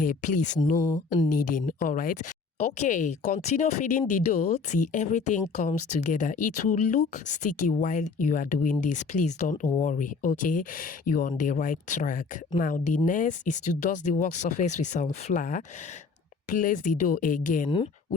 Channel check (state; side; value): quieter; right; 4.7 dB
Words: Please, no kneading, all right? Okay, continue feeding the dough till everything comes together. It will look sticky while you are doing this. Please don't worry, okay? You're on the right track. Now, the next is to dust the work surface with some flour. Place the dough again.